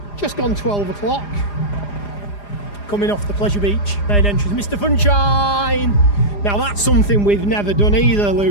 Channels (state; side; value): late; right; 4.9 ms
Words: just gone 12 o'clock. Coming off the Pleasure Beach main entrance. Mr. Funshine! Now that's something we've never done either,